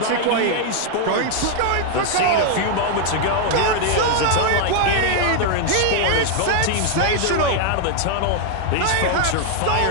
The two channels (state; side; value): different; both; correlation 0.00